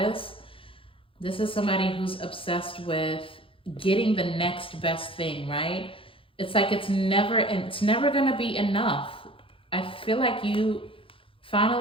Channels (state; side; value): late; right; 0.26 ms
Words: This is somebody who's obsessed with getting the next best thing, right? It's like it's never gonna be enough. I feel like you